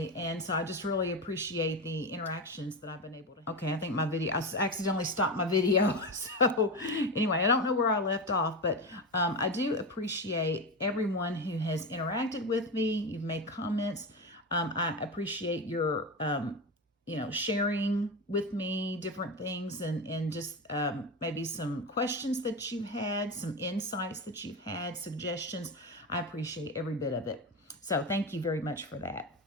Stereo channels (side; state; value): both; normal; correlation 0.19